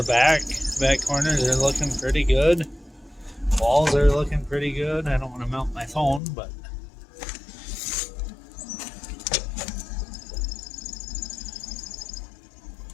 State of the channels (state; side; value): drops out; right; at 6.2 s